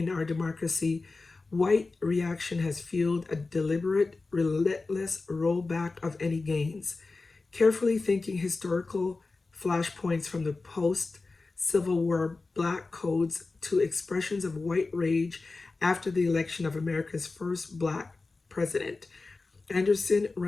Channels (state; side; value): quieter; right; 3.7 dB